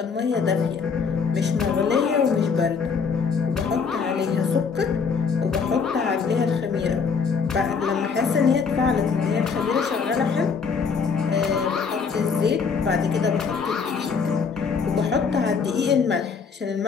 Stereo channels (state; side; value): quieter; right; 5.6 dB